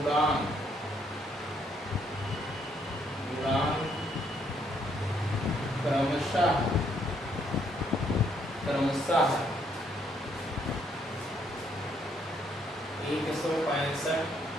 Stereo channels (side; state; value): both; normal; correlation 0.70